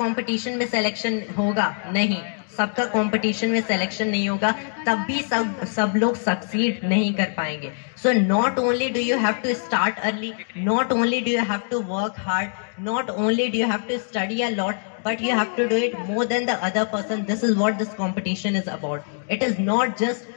कंपटीशन में सिलेक्शन होगा? नहीं, सबका कंपटीशन में सिलेक्शन नहीं होगा, तब भी सब लोग सक्सीड नहीं कर पाएंगे। So not only do you have to start early, not only do you have to work hard, not only do you have to study a lot, but you have to do it more than the other person. This is what this competition is about. It is not just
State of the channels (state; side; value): silent; right; digital silence